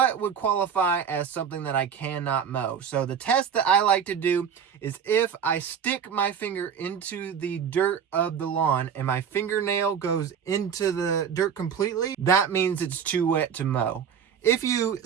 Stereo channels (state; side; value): quieter; left; 7.5 dB